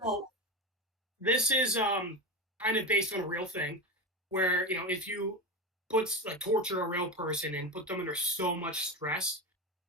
Well, this is kind of based on a real thing, where if you torture a real person and put them under so much stress,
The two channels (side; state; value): both; normal; correlation 0.21